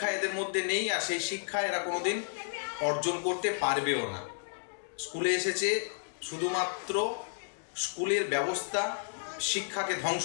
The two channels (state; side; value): silent; right; digital silence